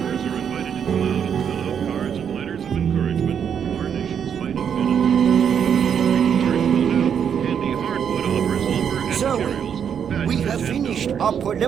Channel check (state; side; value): quieter; left; 7.9 dB